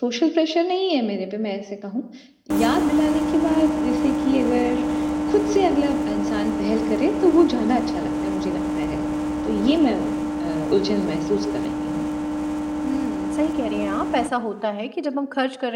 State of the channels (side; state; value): both; identical; correlation 1.00